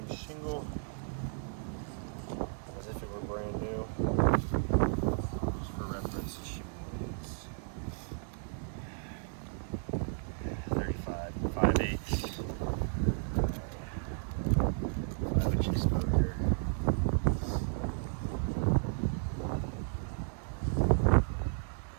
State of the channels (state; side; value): silent; left; 55 dB below the other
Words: shingle as if it were brand new. Just for reference, the shingle is 35, 5/8, 5-inch exposure.